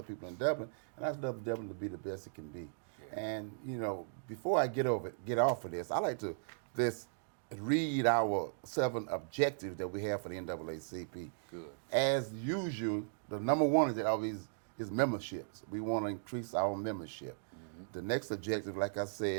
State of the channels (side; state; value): left; silent; digital silence